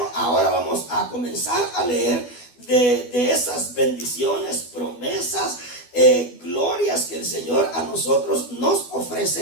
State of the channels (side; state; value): right; late; 12 ms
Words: ahora vamos a comenzar a leer de esas bendiciones, promesas, glorias que el Señor a nosotros nos